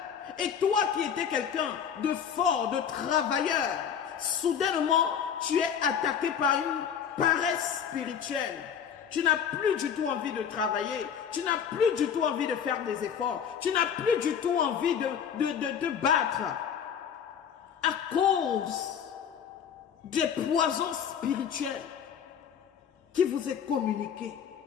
Et toi qui étais quelqu'un de fort, de travailleur, soudainement, tu es attaqué par une paresse spirituelle. Tu n'as plus du tout envie de travailler. Tu n'as plus du tout envie de faire des efforts. Tu n'as plus du tout envie de battre. À cause des poisons spirituels qui vous est communiqués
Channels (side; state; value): right; quieter; 7.9 dB